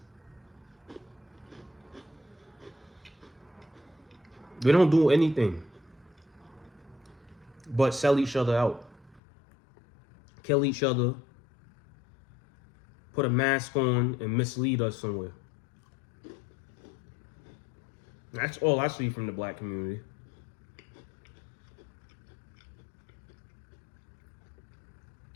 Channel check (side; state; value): right; drops out; at 9.2 s